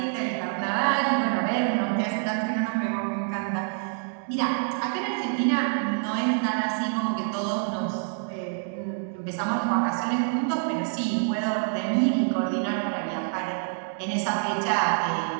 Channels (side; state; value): left; silent; 60 dB below the other